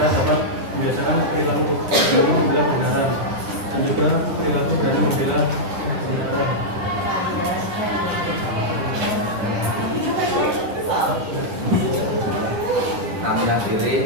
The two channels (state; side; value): late; left; 9.7 ms